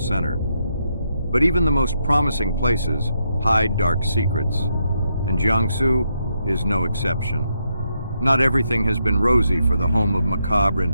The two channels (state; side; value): inverted; both; correlation -0.80